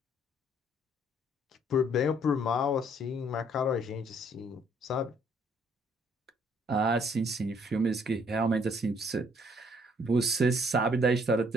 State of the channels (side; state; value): both; normal; correlation 0.64